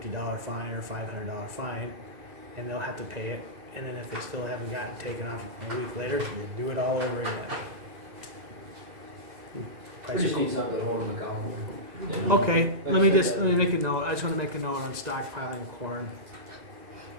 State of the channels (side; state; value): left; late; 2.0 ms